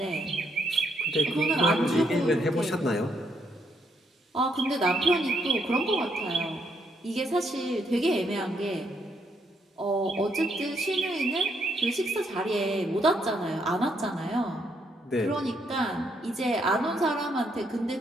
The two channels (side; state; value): both; normal; correlation 0.74